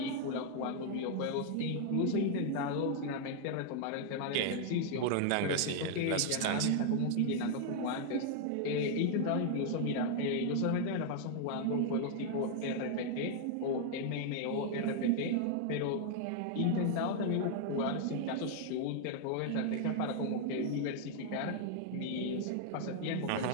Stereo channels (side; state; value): both; different; correlation 0.00